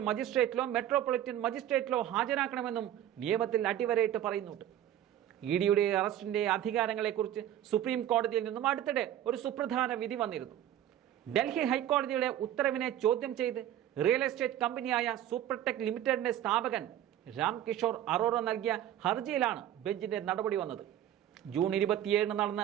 മജിസ്ട്രേറ്റിലോ മെട്രോപൊളിറ്റൻ മജിസ്ട്രേറ്റിലോ ഹാജരാക്കണമെന്നും നിയമത്തിൽ അടിവരയിട്ട് പറയുന്നുണ്ട്. EDയുടെ അറസ്റ്റിന്റെ അധികാരങ്ങളെക്കുറിച്ച് സുപ്രീം കോടതിയിൽ നിന്നും അടുത്തിടെ ഒരു സുപ്രധാന വിധി വന്നിരുന്നു. ഡൽഹി ഹൈക്കോടതിയുടെ ഉത്തരവിനെ ചോദ്യം ചെയ്ത് റിയൽ എസ്റ്റേറ്റ് കമ്പനിയായ സൂപ്പർടെക് ലിമിറ്റഡിന്റെ സ്ഥാപകൻ രാം കിഷോർ അറോറ നൽകിയ ഹർജിയിലാണ് ബെഞ്ചിന്റെ നടപടി വന്നത്. ജൂൺ 27 നടന്ന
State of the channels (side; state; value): left; quieter; 11.7 dB